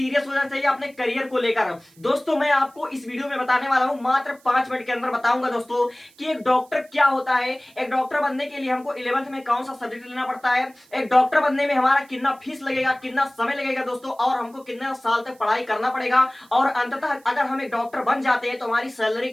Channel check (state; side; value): noise; right; hiss, 29 dB below the sound